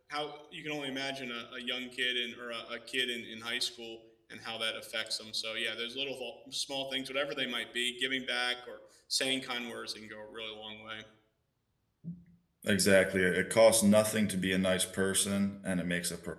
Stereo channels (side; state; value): both; identical; correlation 1.00